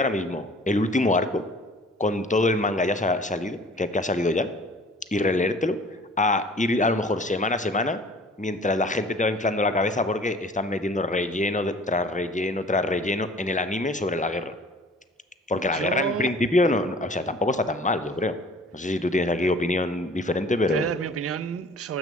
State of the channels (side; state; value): both; normal; correlation 0.49